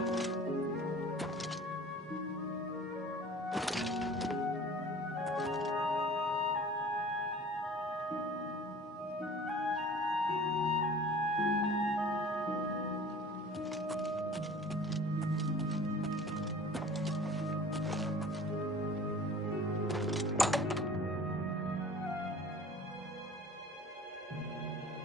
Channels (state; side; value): normal; both; correlation 0.45